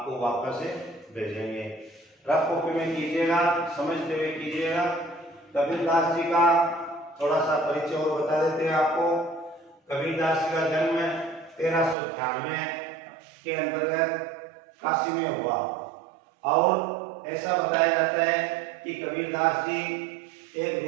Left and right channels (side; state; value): left; drops out; at 12.0 s